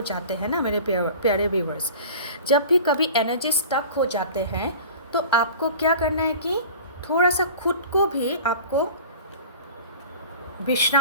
जाते हैं ना मेरे प्यारे व्यूवर्स। जब भी कभी एनर्जी स्टक हो जाते हैं तो आपको क्या करना है कि थोड़ा सा खुद को भी आपको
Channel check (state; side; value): inverted; both; correlation -0.39